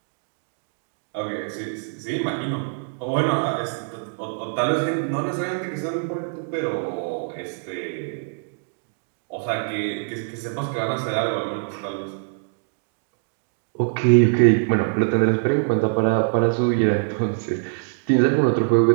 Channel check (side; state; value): left; silent; digital silence